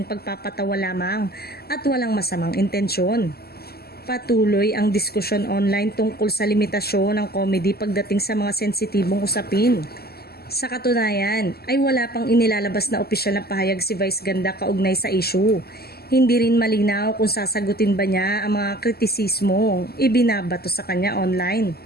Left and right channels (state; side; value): late; right; 0.46 ms